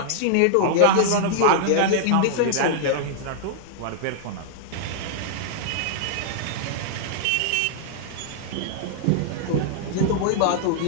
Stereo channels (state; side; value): different; both; correlation -0.01